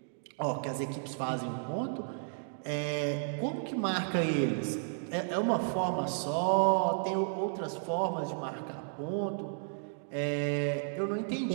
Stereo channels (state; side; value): silent; left; digital silence